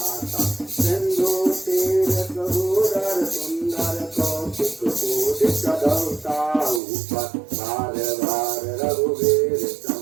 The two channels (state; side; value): drops out; left; at 6.8 s